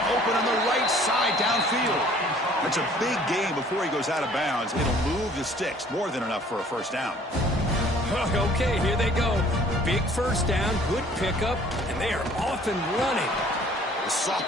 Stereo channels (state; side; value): normal; both; correlation 0.55